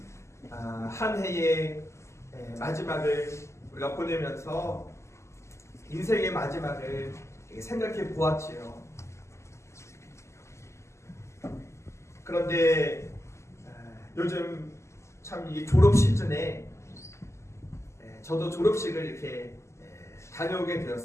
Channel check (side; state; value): right; late; 0.13 ms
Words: 한 해의 마지막을 우리가 보내면서 인생의 마지막을 생각해 보았지요. 그런데 요즘 참 이 졸업 시즌에 저도 졸업식을 이렇게 다녀오게